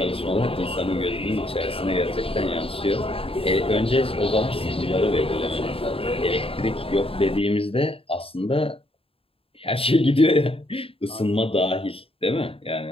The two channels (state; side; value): late; right; 0.27 ms